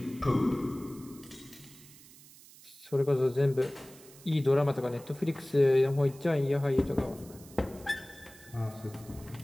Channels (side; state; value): right; noise; hiss, 21 dB below the sound